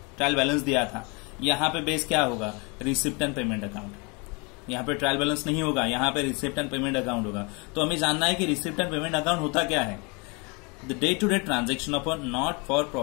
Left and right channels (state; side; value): quieter; right; 30.2 dB